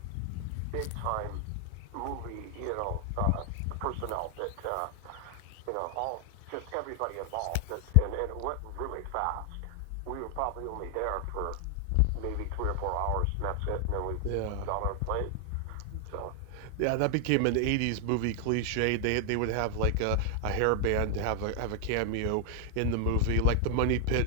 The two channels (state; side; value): different; both; correlation 0.00